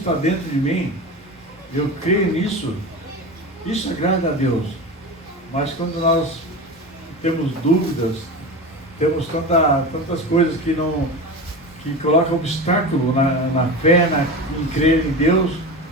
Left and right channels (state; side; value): normal; both; correlation 0.27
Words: dentro de mim, eu creio nisso, isso agrada a Deus. Mas quando nós temos dúvidas, temos tantas coisas que colocam obstáculo na fé, em crer em Deus.